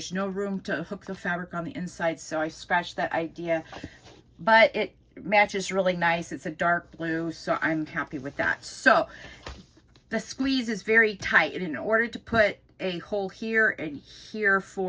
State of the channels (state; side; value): identical; both; correlation 1.00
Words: no room to hook the fabric on the inside, so I scratched that idea. But it matches really nice. It's a dark blue, so I'm happy with that. So the squeeze is very tight, and in order to put a hole here and here